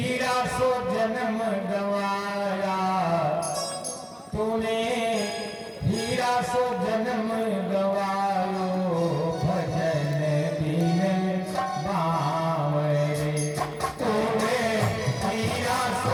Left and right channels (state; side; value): identical; both; correlation 1.00